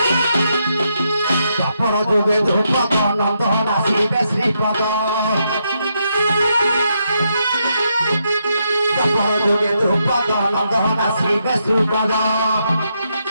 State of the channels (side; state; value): both; inverted; correlation -0.80